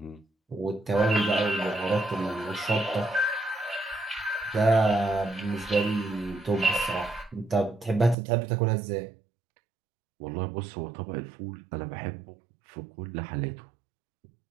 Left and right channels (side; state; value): left; drops out; at 8.2 s